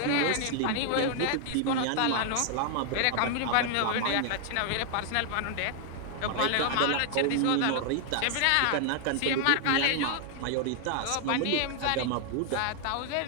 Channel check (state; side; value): different; both; correlation 0.00